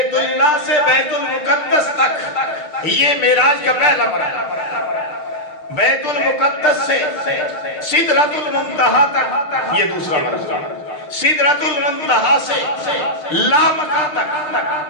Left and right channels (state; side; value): late; right; 6.6 ms